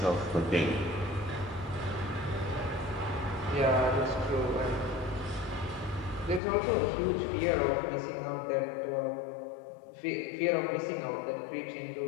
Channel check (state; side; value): drops out; right; at 6.4 s